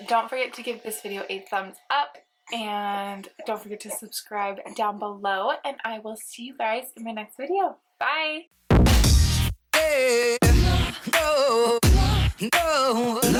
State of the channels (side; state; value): both; identical; correlation 1.00